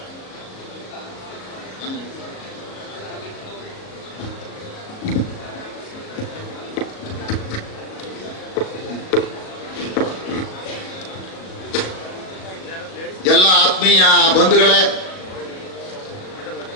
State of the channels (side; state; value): right; late; 37 ms